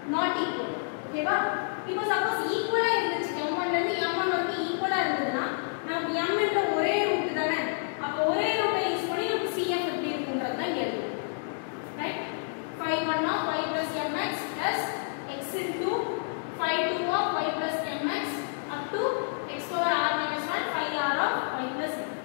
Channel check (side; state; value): right; silent; digital silence